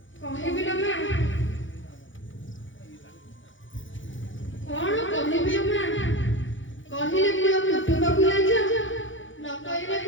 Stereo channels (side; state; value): right; late; 0.56 ms